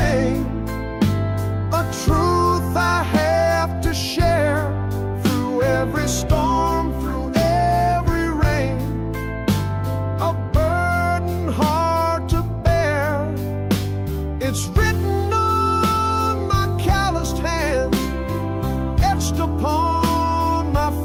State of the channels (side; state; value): both; identical; correlation 1.00